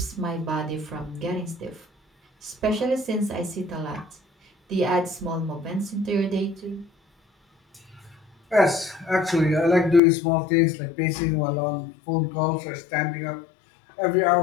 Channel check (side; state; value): right; drops out; at 10.0 s